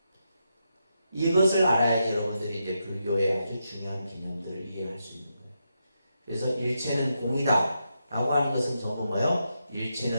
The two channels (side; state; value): both; inverted; correlation -0.84